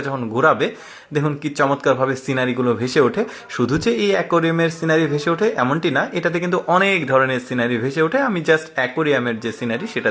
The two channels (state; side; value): identical; both; correlation 1.00